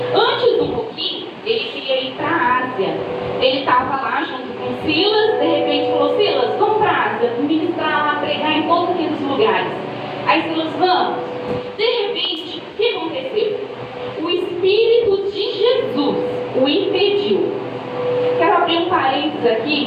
Antes um pouquinho, ele queria ir para a Ásia. Ele estava lá junto com Silas, de repente falou: Silas, vamos para a Ásia, ministrar lá, pregar em todos aqueles lugares. Aí Silas, vamos. De repente, o que aconteceu? O Espírito de Jesus o impediu. Quero abrir um parênteses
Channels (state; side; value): identical; both; correlation 1.00